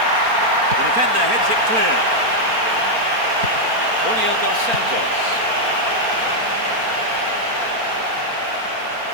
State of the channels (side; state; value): left; late; 4.3 ms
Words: The defender heads it clear. Julio dos Santos.